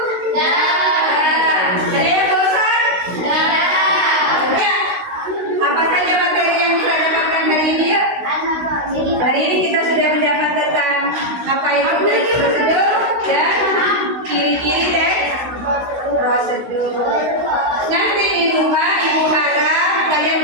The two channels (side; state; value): left; late; 16 ms